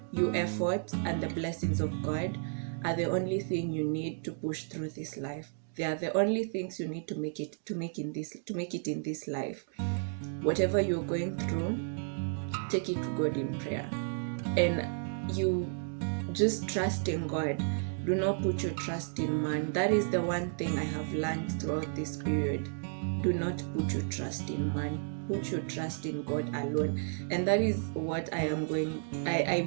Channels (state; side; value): silent; left; digital silence